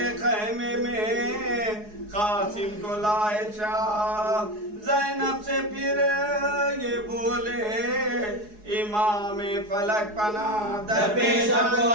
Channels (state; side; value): late; left; 4.8 ms